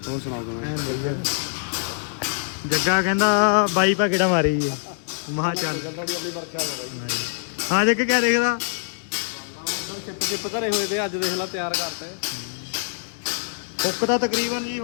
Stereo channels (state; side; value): silent; right; digital silence